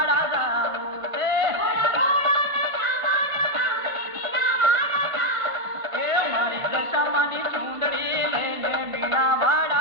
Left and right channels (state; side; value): late; left; 1.5 ms